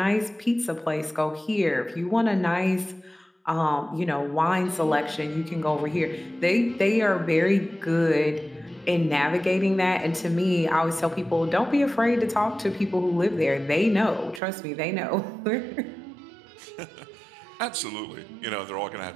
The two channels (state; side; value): drops out; left; at 14.4 s